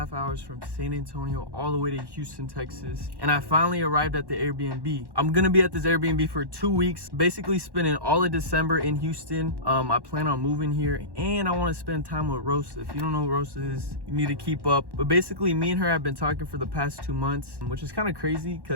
hours from San Antonio all the way to Houston, Texas. And I finally arrived at the Airbnb. I'm gonna be at this Airbnb for 2 weeks, basically spending all of December in Houston. I plan on moving here, and I wanna spend time with Rosa. If you don't know who Rosa is, you need to keep up. But basically, me and her have been talking for the past 2 months, which is kind of crazy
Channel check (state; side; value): late; left; 1.1 ms